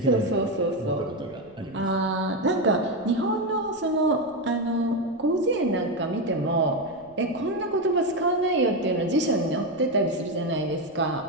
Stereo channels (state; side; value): noise; left; rumble, 28 dB below the sound